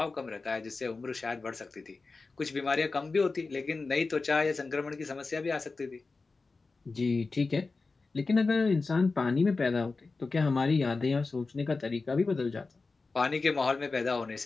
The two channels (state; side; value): quieter; right; 3.9 dB